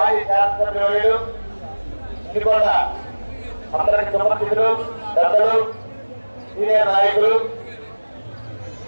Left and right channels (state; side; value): inverted; both; correlation -1.00